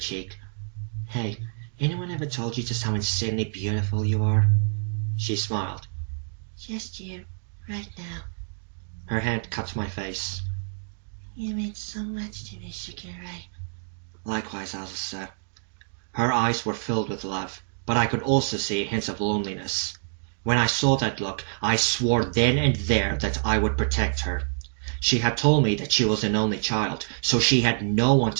Hey, anyone ever told you just how insanely beautiful you are? She smiled. Just you, right now. Her hand cut my face. You mean so much to me, Shakira. Likewise, Azusa. Her eyes were filled with love, but I could also see hints of loneliness. When I saw that look, I swore then and there that I would protect her. She had told me that she was an only child, so she had no one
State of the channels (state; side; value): silent; left; digital silence